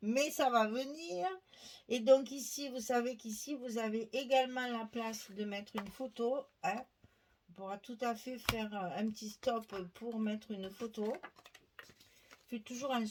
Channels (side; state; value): both; identical; correlation 1.00